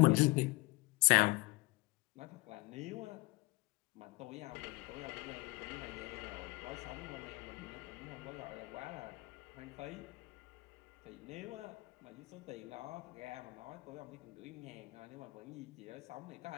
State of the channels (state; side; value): quieter; right; 23.9 dB